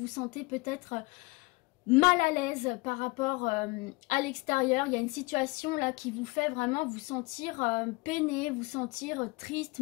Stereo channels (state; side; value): quieter; right; 25.3 dB